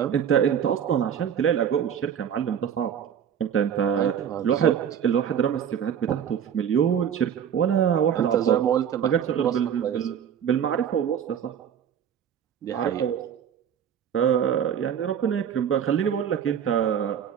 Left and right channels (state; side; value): quieter; left; 8.6 dB